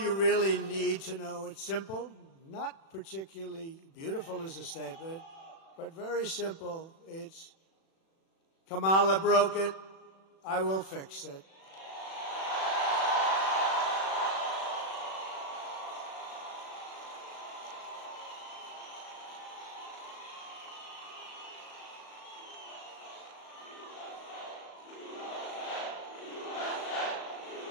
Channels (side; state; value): right; late; 36 ms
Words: really need to know. It's simple, not particularly beautiful as a statement, but very simple. It's Kamala broke it. I will fix it.